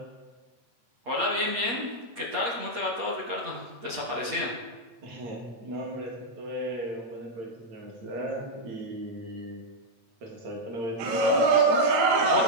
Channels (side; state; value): left; late; 8.4 ms